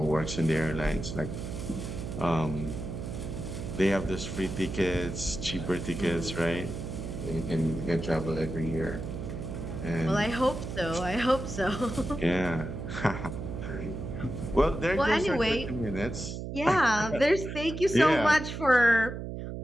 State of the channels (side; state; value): right; noise; hum, 6 dB below the sound